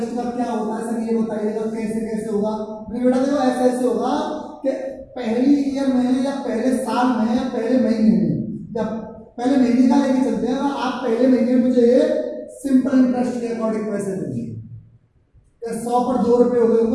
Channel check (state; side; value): identical; both; correlation 1.00